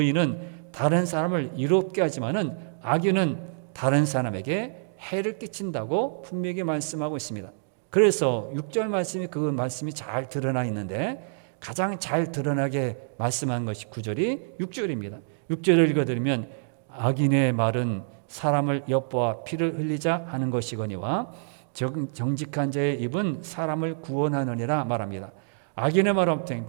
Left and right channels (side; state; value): left; silent; digital silence